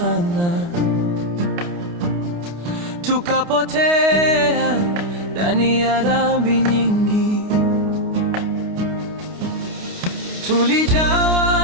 tukapotea ndani ya dhambi nyingi.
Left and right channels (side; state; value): left; late; 29 ms